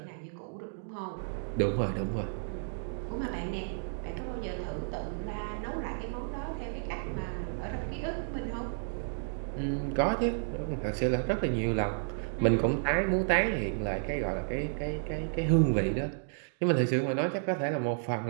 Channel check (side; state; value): left; silent; digital silence